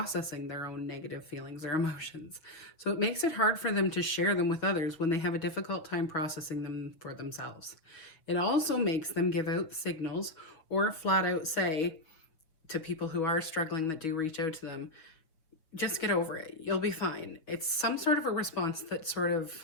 their own negative feelings or emotions. So, it makes it hard for them to share them with others when they have a difficult time processing them for themselves. It also makes them give out signals or flat out say, to people who are struggling that do reach out to them, just get over it. You'll be fine. It's some sort of a response that sort of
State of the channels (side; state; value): right; late; 6.3 ms